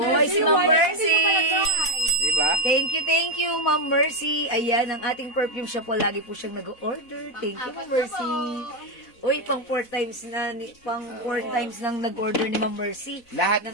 si Ma'am Mercy. Diba? Thank you, Ma'am Mercy. Ayan, ang ating perfume siya po. Lagi po siyang nag-order. Thank you, Ma'am Mercy. Uy, pang 4 times nang nag-order ni Ma'am Mercy. Lahat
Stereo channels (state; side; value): late; right; 4.0 ms